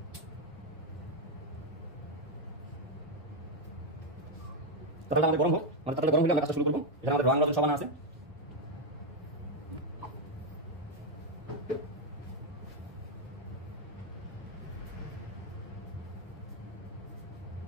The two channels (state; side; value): normal; both; correlation 0.04